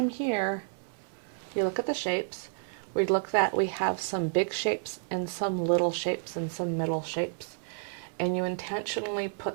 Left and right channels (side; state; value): left; silent; 57 dB below the other